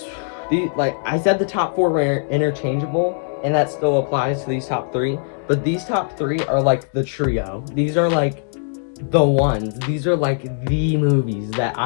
like I said, the top 4 were interchangeable, and that still applies to these top 3. But these top 3 are like the trio. These are like the ones. These are like the movies that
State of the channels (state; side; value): silent; right; 61 dB below the other